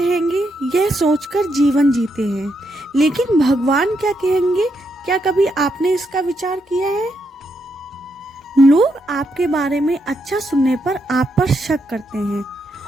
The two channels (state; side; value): normal; both; correlation 0.80